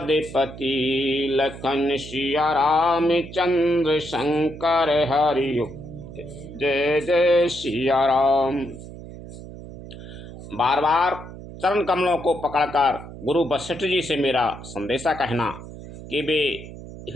लखन सिया राम चंद्र शंकर हरियो, जय जय सिया राम। बार बार चरण कमलों को पकड़कर गुरु वशिष्ठ जी से मेरा संदेशा कहना कि वे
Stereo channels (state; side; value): noise; right; hum, 14 dB below the sound